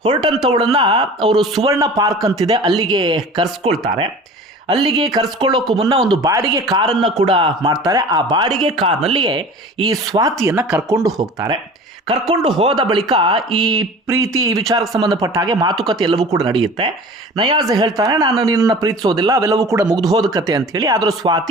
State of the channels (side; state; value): both; normal; correlation 0.40